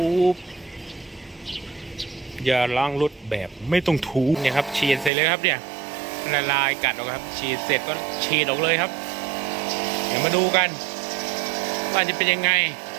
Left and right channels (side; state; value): left; drops out; at 5.1 s